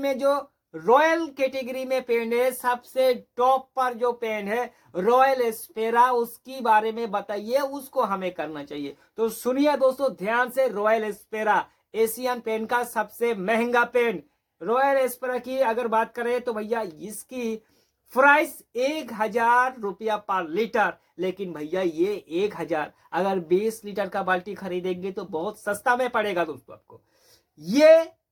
जो रॉयल कैटेगरी में पेन है, सबसे टॉप पर जो पेन है रॉयल एस्पेरा, उसकी बारे में बताइए, उसको हमें करना चाहिए। तो सुनिए दोस्तों ध्यान से, रॉयल एस्पेरा एशियन पेन का सबसे महंगा पेन। रॉयल एस्पेरा की अगर बात करें तो भैया इसकी प्राइस 1000 रुपया पर लीटर, लेकिन भैया ये 1000 अगर 20 लीटर का बाल्टी खरीदेंगे तो बहुत सस्ता में पड़ेगा दोस्तों आपको। ये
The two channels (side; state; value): both; identical; correlation 1.00